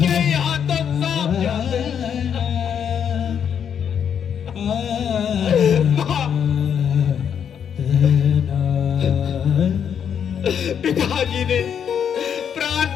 यहाँ तो सांप जाते। पिताजी ने प्राण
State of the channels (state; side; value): quieter; right; 8.1 dB